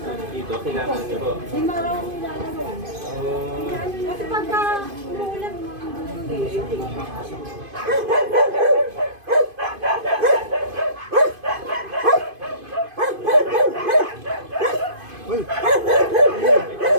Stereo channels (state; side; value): late; left; 2.5 ms